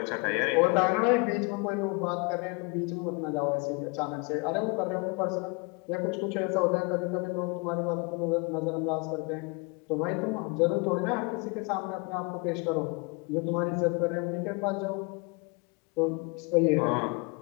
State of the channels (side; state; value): right; quieter; 30.3 dB